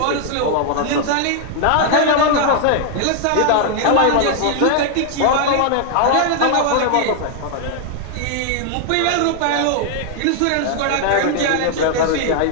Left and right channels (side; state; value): both; different; correlation 0.00